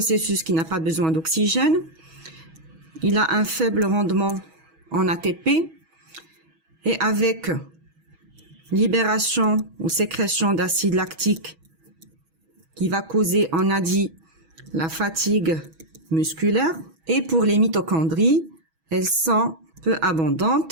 qui n'a pas besoin d'oxygène, il a un faible rendement en ATP et avec libération ou sécrétion d'acide lactique qui va causer, on a dit, la fatigue musculaire. Et pour les mitochondries, elles sont peu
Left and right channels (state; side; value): late; left; 6.2 ms